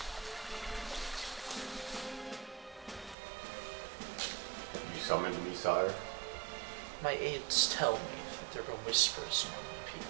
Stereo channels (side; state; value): left; drops out; at 3.2 s